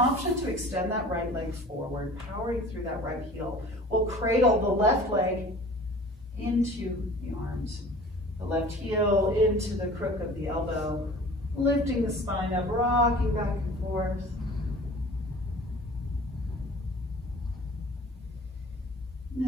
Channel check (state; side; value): normal; both; correlation 0.45